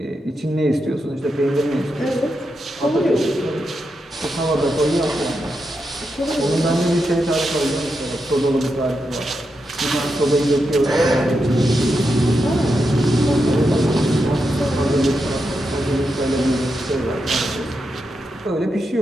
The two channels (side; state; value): both; normal; correlation 0.86